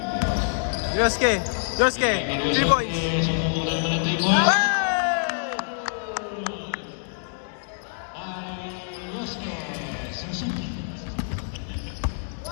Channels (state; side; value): silent; right; digital silence